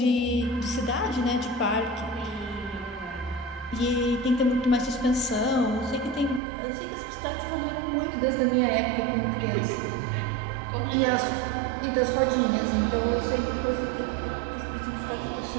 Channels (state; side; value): drops out; left; at 6.4 s